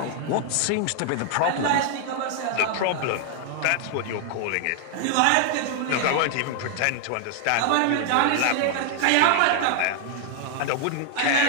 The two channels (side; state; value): both; different; correlation 0.00